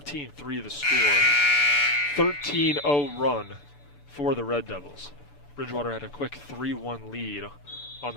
the score. 13-0 run for the Red Devils. Bridgewater had a quick 3-1 lead on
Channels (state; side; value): late; right; 6.9 ms